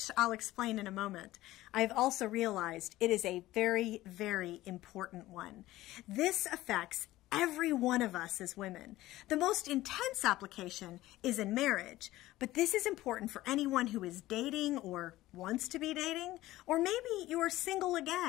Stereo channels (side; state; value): right; quieter; 16.5 dB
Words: I'll explain in a moment, I've also realized it is a very, very important one. This affects every one of us as women. The most intense application is in marriage, but this is important for anyone who is dating or wants to be dating, or maybe you are single